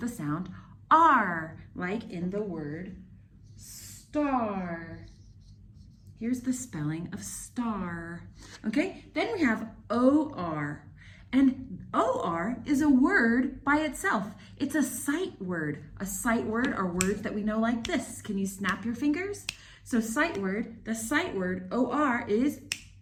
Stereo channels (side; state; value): both; identical; correlation 1.00